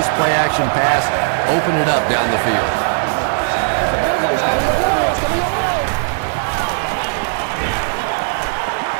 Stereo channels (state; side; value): silent; left; digital silence